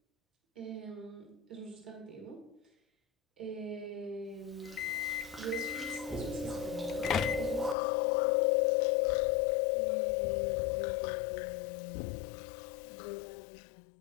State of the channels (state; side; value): drops out; right; at 7.8 s